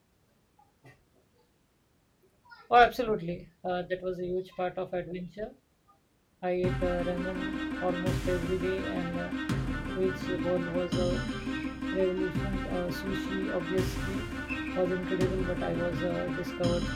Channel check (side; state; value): both; identical; correlation 1.00